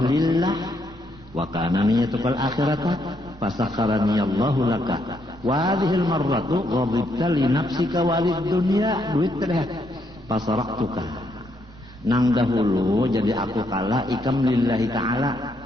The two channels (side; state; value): both; normal; correlation 0.75